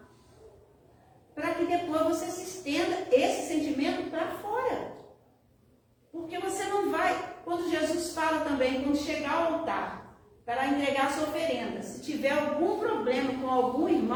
Para que depois você se estenda esse sentimento para fora. Porque você não vai, quando Jesus fala também, quando chegar ao altar, para entregar a sua oferenda. Se tiver algum problema com algum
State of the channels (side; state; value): both; identical; correlation 1.00